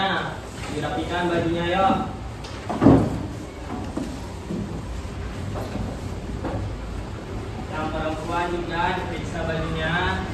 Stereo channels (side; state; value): both; identical; correlation 1.00